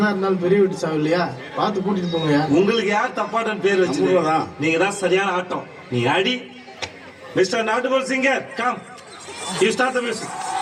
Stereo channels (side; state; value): both; identical; correlation 1.00